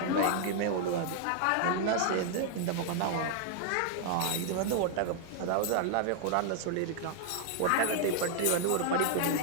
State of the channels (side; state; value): both; different; correlation -0.01